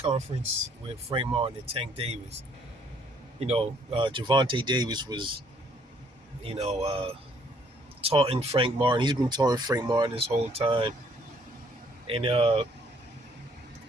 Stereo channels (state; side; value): normal; both; correlation 0.64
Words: with Frank Martin and Tank Davis, Javante Davis was, you know, uh, taunting Frank Martin. He's been taunting Frank Martin this whole time. And